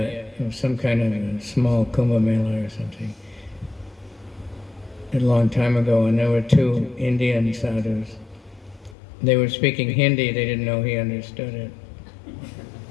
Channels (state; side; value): drops out; right; at 9.0 s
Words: some kind of a small Kumbh Mela or something, a long time ago, and there were two Indian sadhus. They were speaking Hindi, they didn't know he understood it.